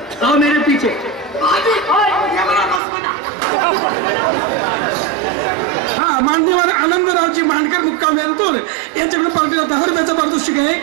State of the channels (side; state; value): left; drops out; at 2.8 s